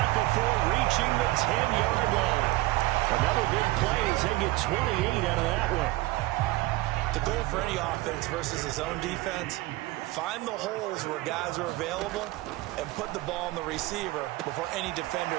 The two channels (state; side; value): quieter; left; 19.5 dB